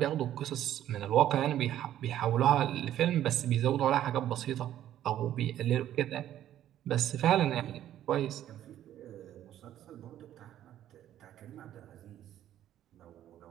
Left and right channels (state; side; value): quieter; left; 11.9 dB